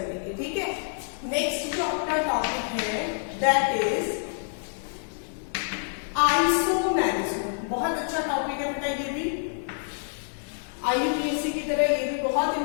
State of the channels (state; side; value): silent; right; digital silence